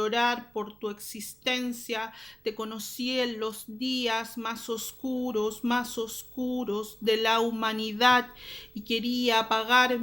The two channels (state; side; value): noise; right; rumble, 30 dB below the sound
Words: por tu existencia. Te conocí en los días más oscuros de la humanidad y quería